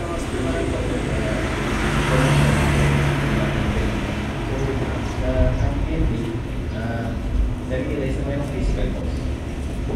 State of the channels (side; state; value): both; identical; correlation 1.00